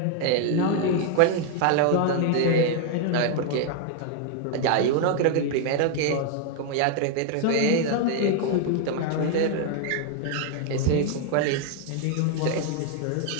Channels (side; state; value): both; different; correlation 0.00